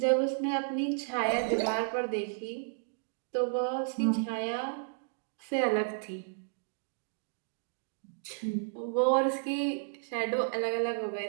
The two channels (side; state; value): left; silent; digital silence